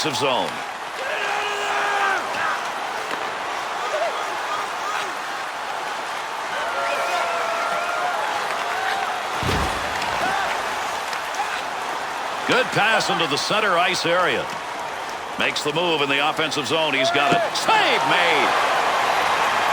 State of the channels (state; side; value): identical; both; correlation 1.00